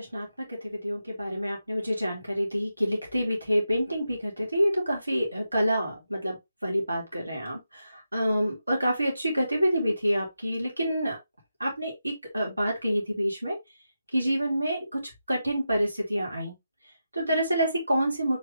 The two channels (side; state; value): both; inverted; correlation -0.89